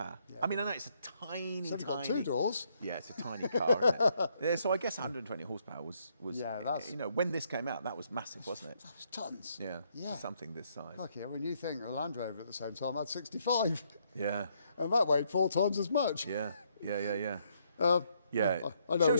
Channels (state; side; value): inverted; both; correlation -0.72